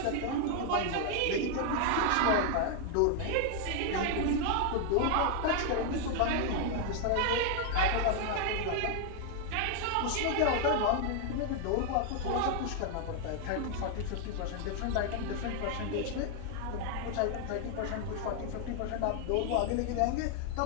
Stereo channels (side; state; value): both; different; correlation 0.00